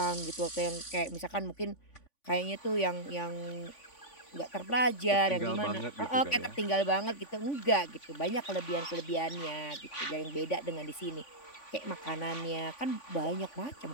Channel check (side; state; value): right; late; 3.5 ms